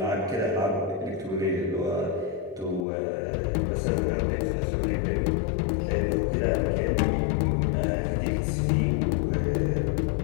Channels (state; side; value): drops out; right; at 2.9 s